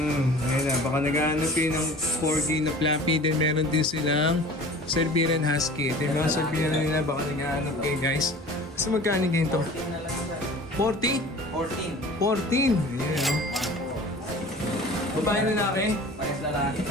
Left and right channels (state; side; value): normal; both; correlation 0.42